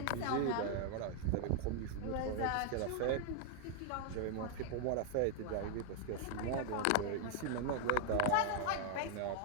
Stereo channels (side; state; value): both; different; correlation 0.00